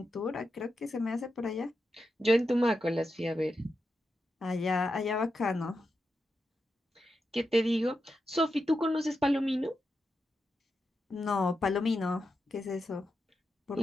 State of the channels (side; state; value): both; normal; correlation 0.87